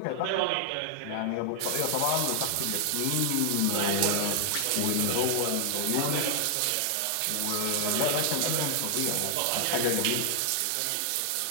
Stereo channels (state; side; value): different; both; correlation -0.01